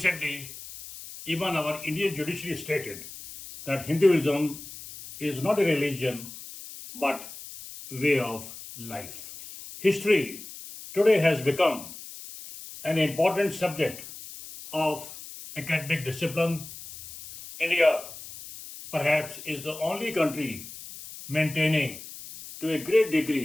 even our Indian judiciary stated that Hinduism is not a religion but way of life. History today has become an important subject of academic discipline. India perhaps is the only country maintaining to a great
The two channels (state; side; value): noise; left; hiss, 14 dB below the sound